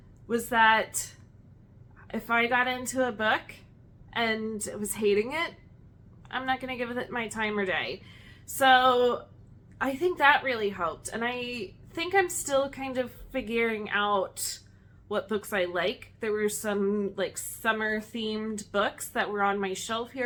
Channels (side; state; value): both; identical; correlation 1.00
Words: was that if I got into a book and was hating it, I'm not going to give it my time or day. So I think that really helped, and I think I'm still kind of figuring out what books I like. There were some like summer themed books that were on my shelf